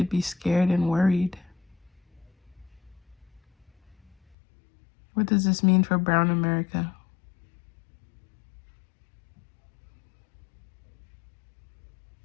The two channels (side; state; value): right; drops out; at 4.2 s